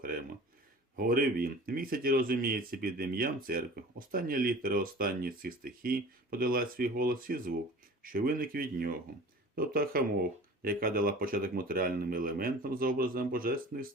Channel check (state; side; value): normal; both; correlation 0.42